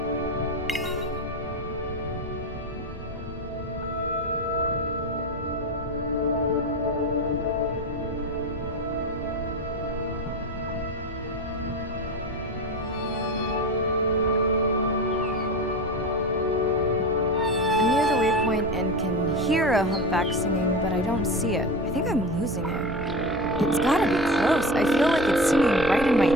point and can hear a humpback singing, but I don't see it. I think I'm losing it. It's gotta be close. I feel like it's singing right in my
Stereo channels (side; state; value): both; normal; correlation 0.25